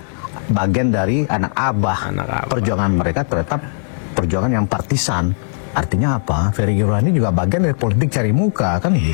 bagian dari anak abah. Perjuangan mereka tetap perjuangan yang partisan. Artinya apa? Ferry Yurani juga bagian dari politik cari muka, kan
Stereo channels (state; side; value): silent; right; digital silence